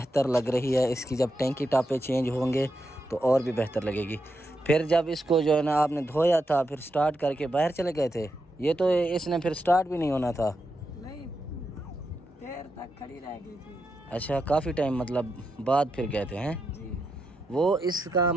लग रही है, इसकी जब टैंकी टापे चेंज होंगे तो और भी बेहतर लगेगी। फिर जब इसको जो है ना आपने धोया था, फिर स्टार्ट करके बाहर चले गए थे, ये तो इसने फिर स्टार्ट भी नहीं होना था, नहीं देर तक खड़ी रह गई थी। अच्छा काफ़ी टाइम मतलब बाद फिर गए थे हैं जी। वो इसका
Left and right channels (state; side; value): normal; both; correlation 0.85